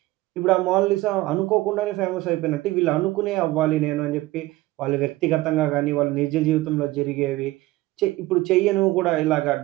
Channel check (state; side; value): quieter; left; 18.3 dB